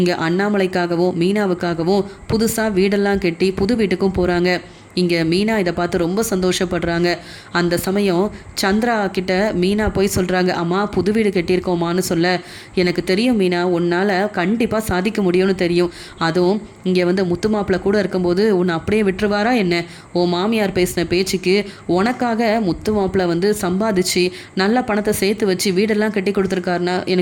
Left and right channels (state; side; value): identical; both; correlation 1.00